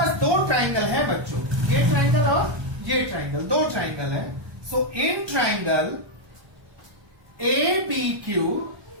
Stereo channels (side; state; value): left; late; 1.2 ms